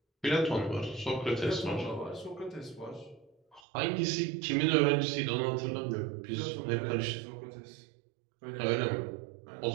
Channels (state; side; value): drops out; left; at 3.6 s